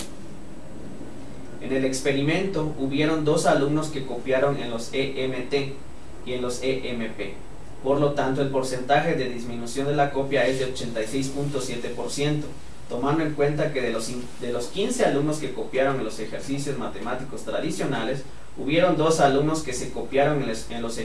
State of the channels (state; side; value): identical; both; correlation 1.00